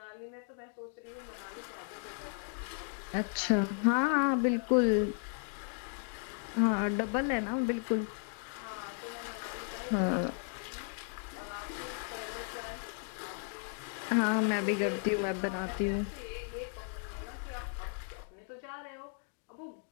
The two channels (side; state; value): right; silent; 54 dB below the other